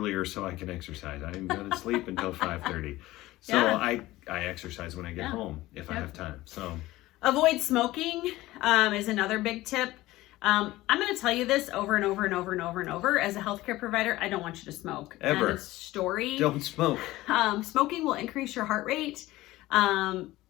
so I can exercise. I am going to sleep until 5:30. So I exercise when I get home if I have time. So avoid smoking is another big tip. I'm going to tell you this over and over and over and over and over. As a healthcare provider, I don't want you to smoke. Ever. End of story. Don't smoke. Smoking will increase your heart rate.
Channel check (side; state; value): right; quieter; 17.6 dB